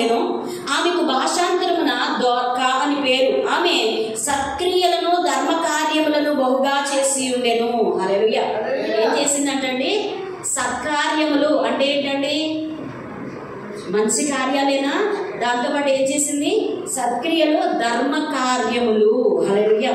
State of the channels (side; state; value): both; identical; correlation 1.00